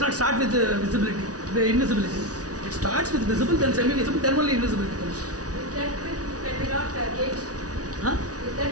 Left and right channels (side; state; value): left; late; 0.68 ms